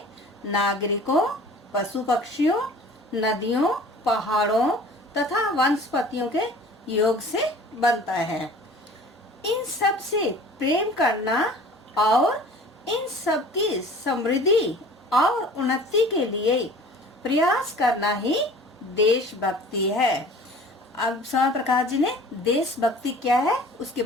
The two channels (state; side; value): normal; both; correlation 0.45